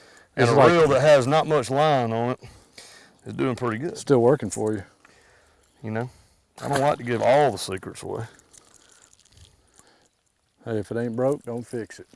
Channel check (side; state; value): both; identical; correlation 1.00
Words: and It's a like- reel that has not much line on it is doing pretty good. Still working for you. You know, I don't like to give all the secrets away. Hey, if it ain't broke, don't fix it.